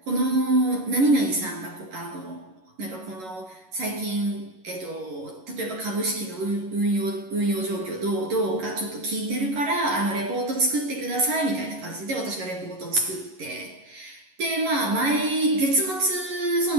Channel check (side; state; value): left; late; 11 ms